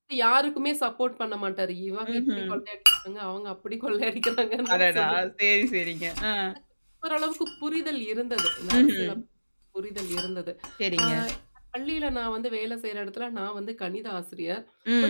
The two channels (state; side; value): inverted; both; correlation -1.00